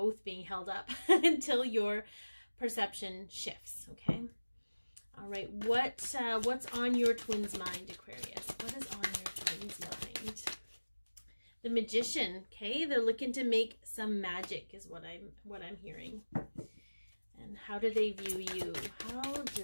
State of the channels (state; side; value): inverted; both; correlation -1.00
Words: being held up until your perception shifts. Okay, all right, what's on your twin's mind, Aquarius? What is on your twin's mind? The Magician. Okay, they're looking to make some magic is what I'm hearing. And how do they view you? How do